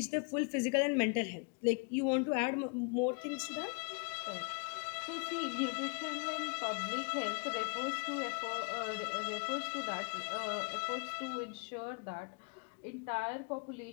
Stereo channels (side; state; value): right; quieter; 35.6 dB